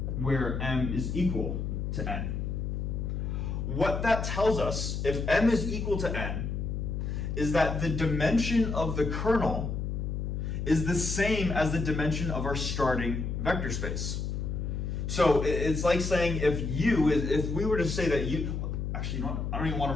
where m is equal to n. What that tells us, if m is equal to n, is that the dimension of the kernel is the same as the dimension of our starting vector space. So it's like saying if we were to say that U, actually, you know what? I don't even want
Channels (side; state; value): left; noise; hum, 3 dB below the sound